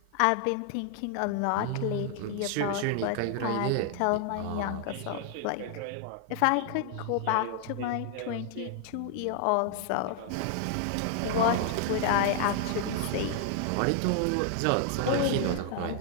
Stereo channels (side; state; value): both; different; correlation 0.00